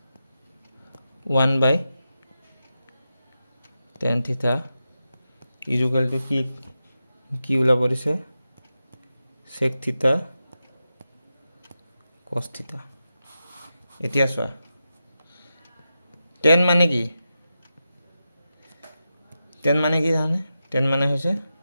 1 by tan theta equal to কি ওলাব দিছে sec theta cos theta এতিয়া চোৱা tan মানে কি জানে tan মানে হৈছে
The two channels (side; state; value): both; inverted; correlation -0.90